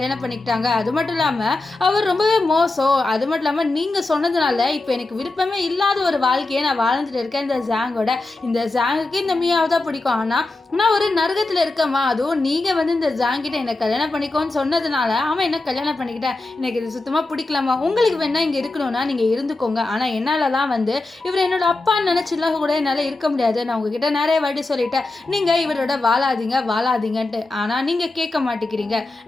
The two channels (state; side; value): quieter; right; 3.1 dB